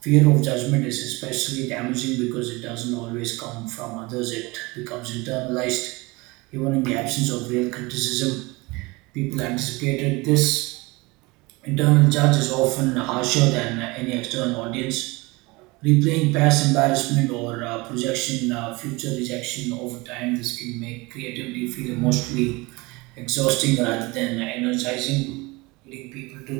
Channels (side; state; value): left; quieter; 24.0 dB